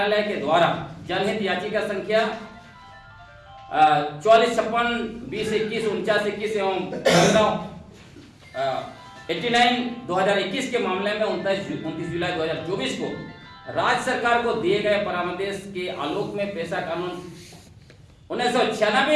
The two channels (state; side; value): identical; both; correlation 1.00